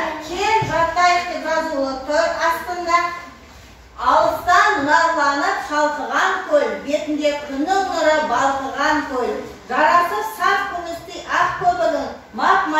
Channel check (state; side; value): identical; both; correlation 1.00